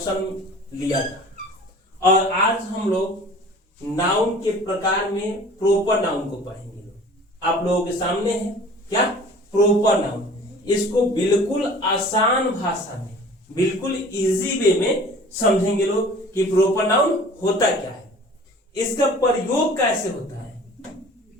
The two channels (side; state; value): both; normal; correlation 0.46